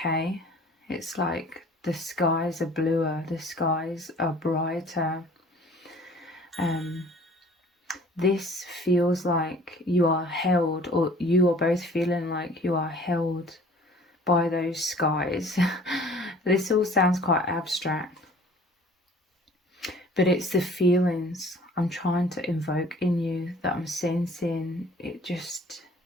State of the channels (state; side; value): normal; both; correlation 0.51